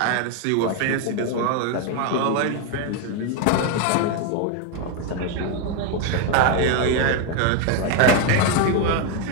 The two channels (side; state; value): both; different; correlation 0.01